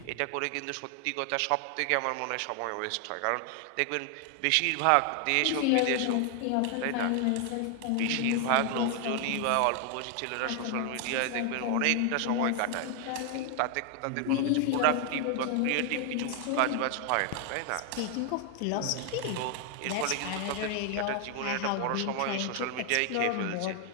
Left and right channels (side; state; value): both; different; correlation 0.00